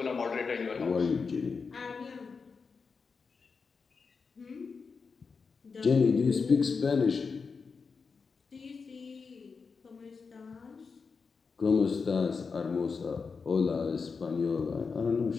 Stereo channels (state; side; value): quieter; right; 5.1 dB